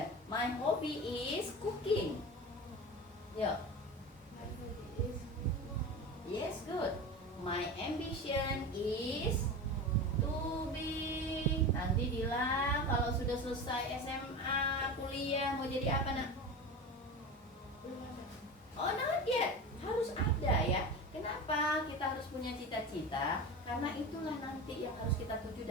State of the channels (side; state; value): both; normal; correlation 0.28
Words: My hobby is cooking. Ya. My hobby is Yes, good. My ambition is to be. Nanti Dila kalau sudah selesai SMA, kuliah mau jadi apa, nak? belum ada. Oh, not yet. Harus ada ya. Kenapa kita harus punya cita-cita? Karena itulah nanti yang harus kita tuju